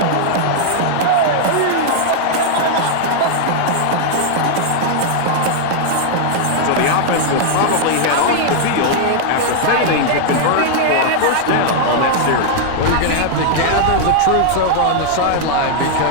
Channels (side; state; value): both; different; correlation 0.00